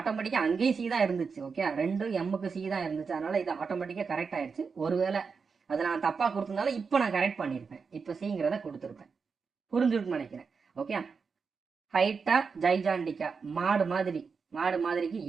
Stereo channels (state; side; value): quieter; left; 5.3 dB